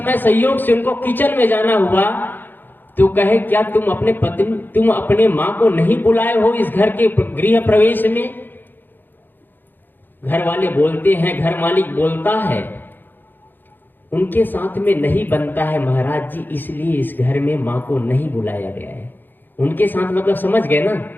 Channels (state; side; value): late; right; 0.092 ms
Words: संयोग से उनको किचन में जाना हुआ तो कहे क्या तुम अपने माँ को नहीं बुलाए हो इस घर के गृह प्रवेश में? घर वाले बोलते हैं, घर मालिक बोलता है उनके साथ में नहीं बनता है महाराज जी, इसलिए इस घर में माँ को नहीं बुलाया गया है। उनके साथ मतलब समझ गए ना,